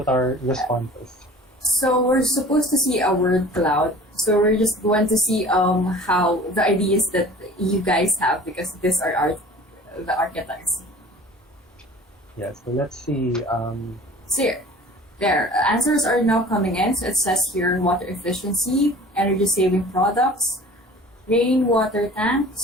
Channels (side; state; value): both; normal; correlation 0.44